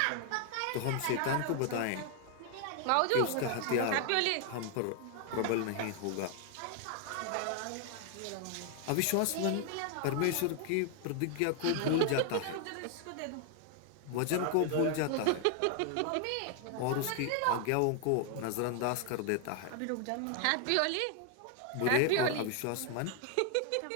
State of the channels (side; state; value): both; different; correlation 0.00